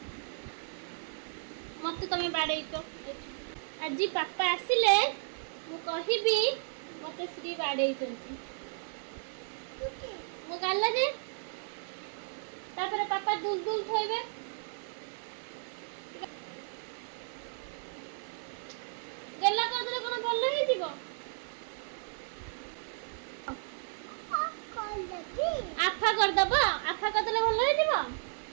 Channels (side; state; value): left; silent; digital silence